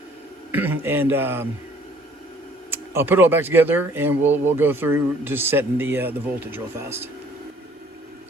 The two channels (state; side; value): normal; both; correlation 0.58